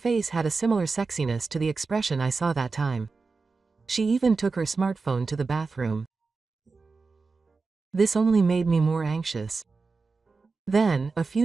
had a similar sexiness to the expression I saw that time. She even took her smartphone to the bathroom. This only made me more anxious. Then, a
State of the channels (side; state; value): left; quieter; 4.3 dB